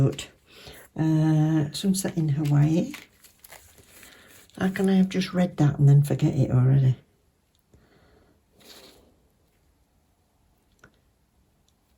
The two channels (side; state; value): both; identical; correlation 1.00